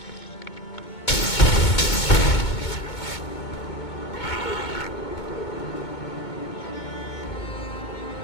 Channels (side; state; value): right; late; 2.2 ms